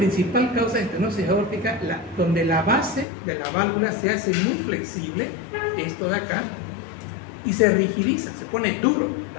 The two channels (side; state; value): right; drops out; at 3.1 s